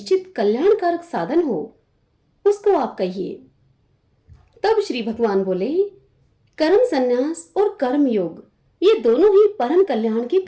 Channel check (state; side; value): identical; both; correlation 1.00